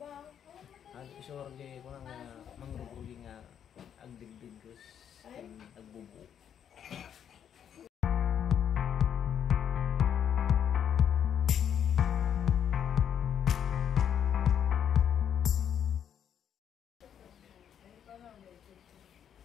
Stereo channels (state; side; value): quieter; right; 8.9 dB